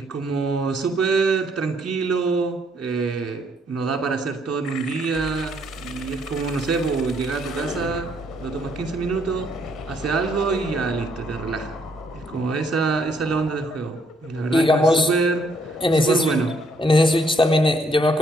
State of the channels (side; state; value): both; normal; correlation 0.69